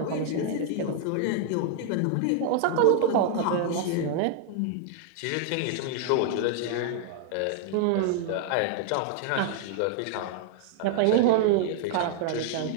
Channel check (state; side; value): different; both; correlation 0.00